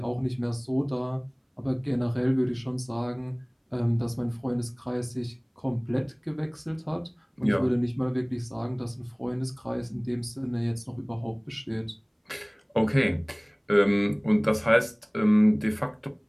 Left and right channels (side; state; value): both; identical; correlation 1.00